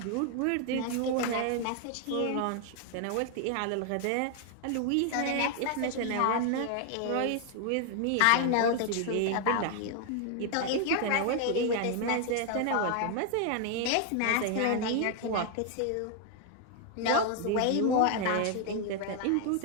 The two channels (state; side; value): different; both; correlation 0.00